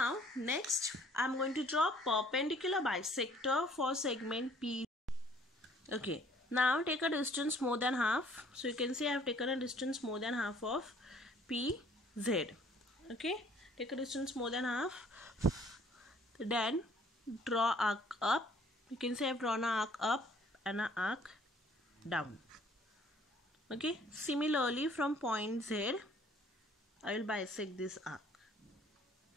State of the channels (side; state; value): both; normal; correlation 0.58